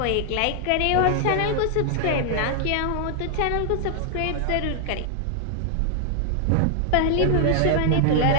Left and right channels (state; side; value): different; both; correlation 0.00